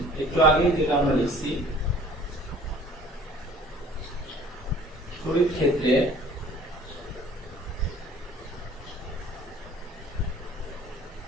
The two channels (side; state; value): both; normal; correlation 0.50